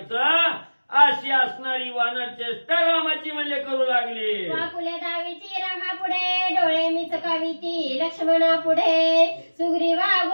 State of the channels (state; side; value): inverted; both; correlation -1.00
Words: अशी असणारी वानर चेष्टा रामाची म्हणजे करू लागली. वाकुल्या दावीची रामा पुढे, डोळे मिचकावीती लक्ष्मणा पुढे. सुग्रीवा